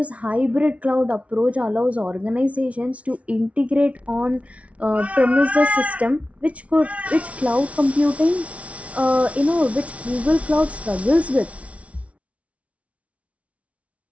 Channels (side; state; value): left; late; 0.065 ms